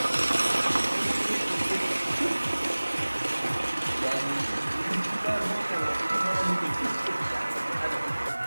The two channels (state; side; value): inverted; both; correlation -1.00